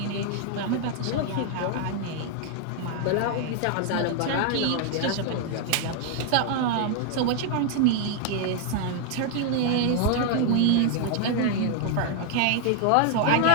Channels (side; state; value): both; different; correlation 0.00